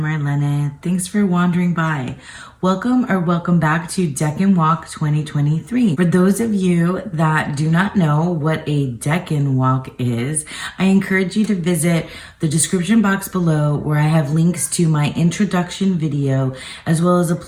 Marlene. Thanks for wandering by. Welcome or welcome back to Decan Walk 2023. For those of you that do not know what a Decan Walk is, I encourage you to visit the description box below where I have links to my introduction video as well as a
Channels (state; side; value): identical; both; correlation 1.00